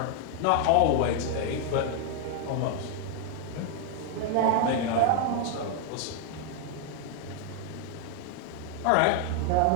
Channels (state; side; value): different; both; correlation 0.00